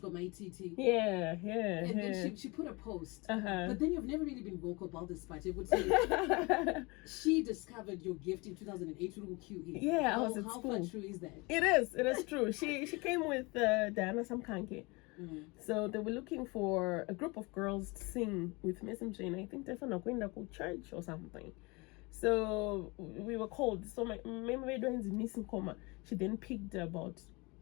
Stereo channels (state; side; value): quieter; right; 26.4 dB